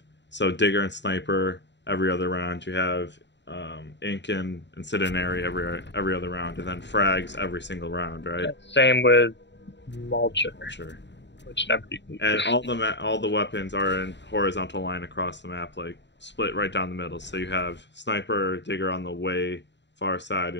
Digger and Sniper every other round. You have Ink and Incendiary every other round, and then frags every single round, right? Same with Mulcher. Sure. Which never. And all the weapons are in horizontal line across the map, like split right down the middle. So you have Sniper, Digger on the way far side,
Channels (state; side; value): late; right; 0.52 ms